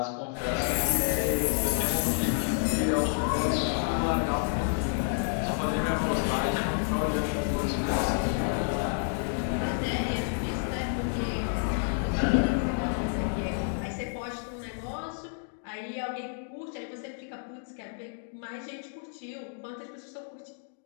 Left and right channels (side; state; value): right; silent; digital silence